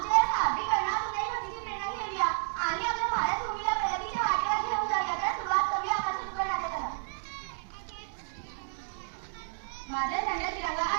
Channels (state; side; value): silent; left; digital silence